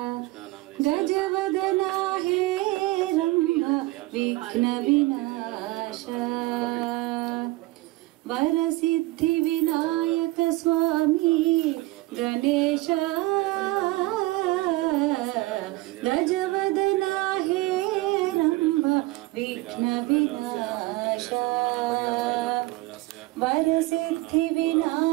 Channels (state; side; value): quieter; left; 20.4 dB